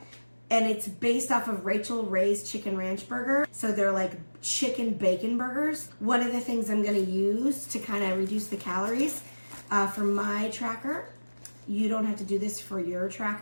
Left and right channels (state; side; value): inverted; both; correlation -1.00